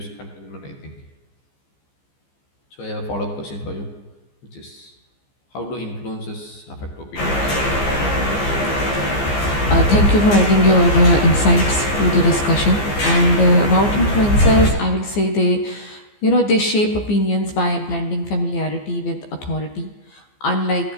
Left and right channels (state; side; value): late; right; 15 ms